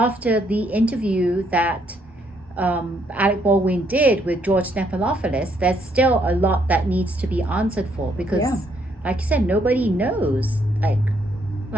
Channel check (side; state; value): both; normal; correlation 0.71